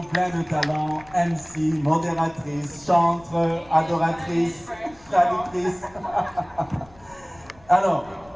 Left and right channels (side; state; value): left; noise; rumble, 26 dB below the sound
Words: plein de talents. MC, modératrice, chanteuse, adoratrice, traductrice. Alors,